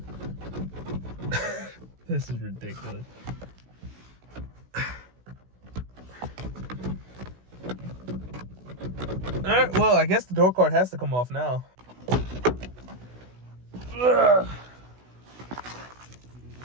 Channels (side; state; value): left; late; 16 ms